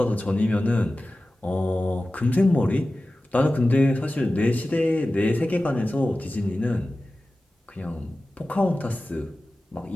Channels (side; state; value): both; normal; correlation 0.95